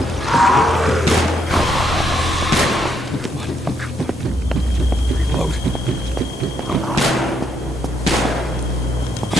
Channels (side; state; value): both; normal; correlation 0.75